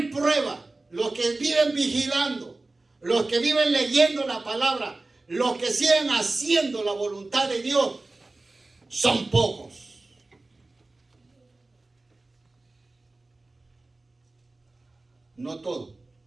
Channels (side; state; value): left; quieter; 3.1 dB